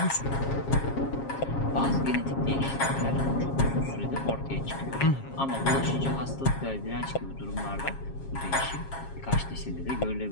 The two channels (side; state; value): right; late; 7.4 ms